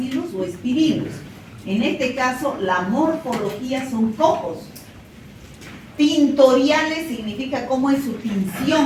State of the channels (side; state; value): both; identical; correlation 1.00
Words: o espirilos. En este caso, la morfología son cocos. Tintoriales significa cómo es su